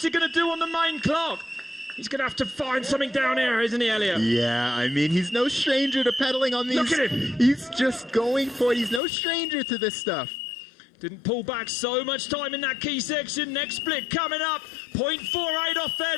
he going to do on the main clock? He's going to have to find something down here, isn't he, Elliot? Yeah, I mean, he's no stranger to pedaling on these. Look at him. He's just going for it. He's no stranger to this stuff. Didn't pull back so much time in that key section. Next split coming up. 0.48 off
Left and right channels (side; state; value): right; drops out; at 9.0 s